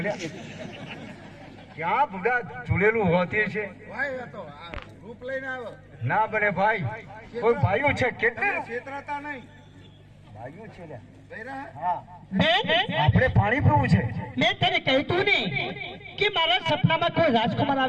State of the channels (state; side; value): identical; both; correlation 1.00